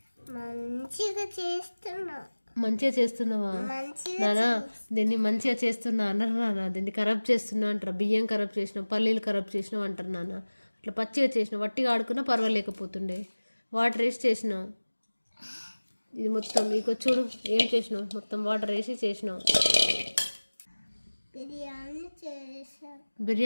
చేస్తున్నా. మంచిగా చేస్తున్నావా నానా? దీన్ని మంచిగా చేస్తున్నా అన్నారు నాన్న. దీన్ని ఖరాబ్ చేస్తున్నా అంటారు. బియ్యం ఖరాబ్ చేసినావు, పల్లీలు ఖరాబ్ చేసినావు అంటారు నాన్న. అట్లా పచ్చిగా చేసినావు. వట్టిగా ఆడుకున్నా పర్వాలేకపోతుండే. వాటర్ వేసి చేసినావు. ఇది మొత్తం మీకు చూడు ఏం చేసినావు. మొత్తం వాటర్ వేసి చేసినావు.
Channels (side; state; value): both; inverted; correlation -1.00